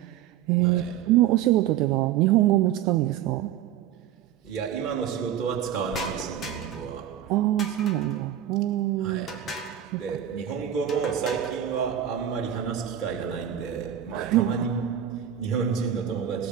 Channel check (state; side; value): quieter; left; 10.5 dB